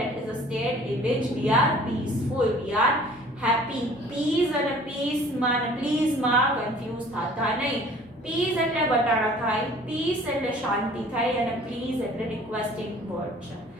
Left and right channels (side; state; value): both; normal; correlation 0.51